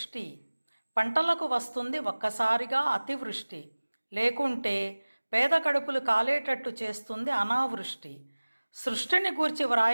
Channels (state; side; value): inverted; both; correlation -1.00